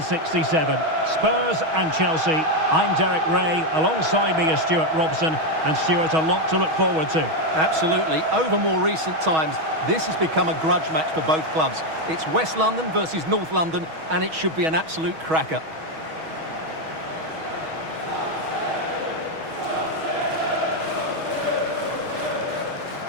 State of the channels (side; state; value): left; late; 6.3 ms